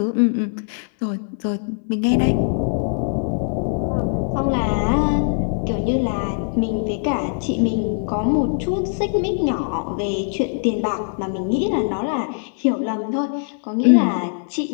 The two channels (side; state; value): right; silent; 64 dB below the other